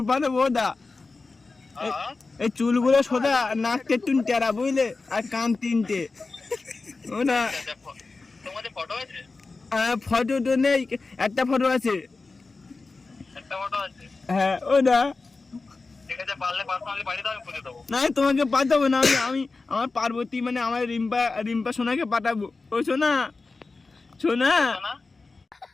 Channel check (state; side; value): quieter; right; 3.8 dB